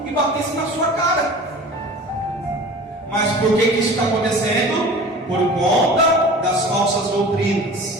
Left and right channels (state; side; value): normal; both; correlation 0.40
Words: e batesse na sua cara. Mas por que isso está acontecendo? Por conta das falsas